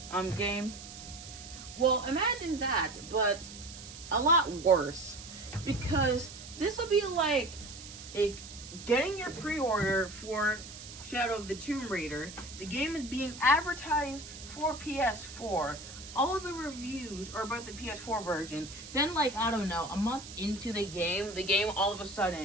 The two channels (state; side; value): noise; right; hiss, 14 dB below the sound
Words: game? Well, imagine that, but a lot worse. Because this will be like getting your pre-order for Shadow of the Tomb Raider. The game is being advertised for PS4. All the reviews are about the PS4 version. Then, a month into the game all of a